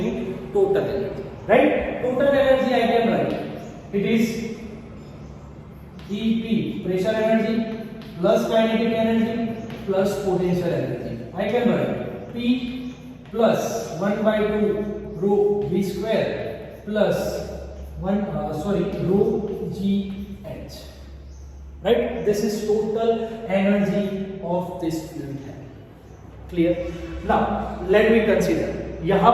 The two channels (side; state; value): both; identical; correlation 1.00